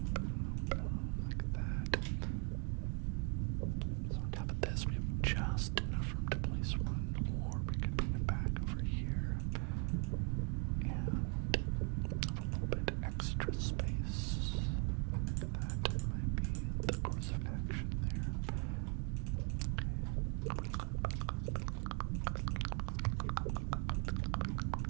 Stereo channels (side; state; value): left; quieter; 38.6 dB